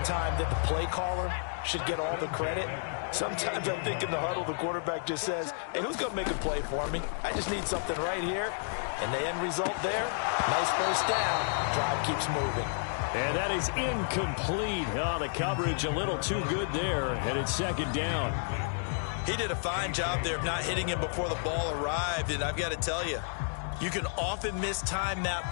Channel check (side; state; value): right; silent; digital silence